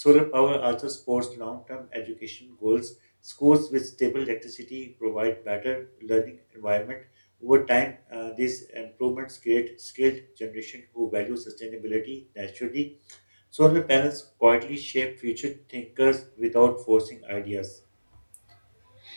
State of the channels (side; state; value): both; inverted; correlation -1.00